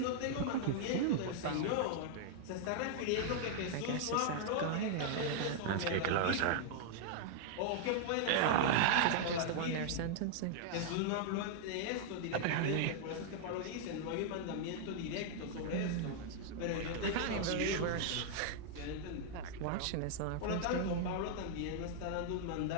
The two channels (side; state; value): both; different; correlation -0.01